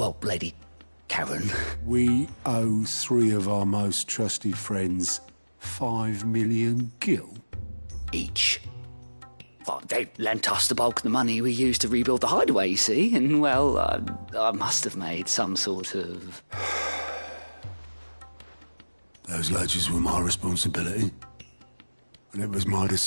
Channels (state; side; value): inverted; both; correlation -1.00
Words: Lady Karen. We owe 3 of our most trusted friends 5 million gil. Each. Well, they lent us the bulk of the money we used to rebuild the hideaway, you see, and, well, I must have made some sort of... Those ledgers were my responsibility, and it was my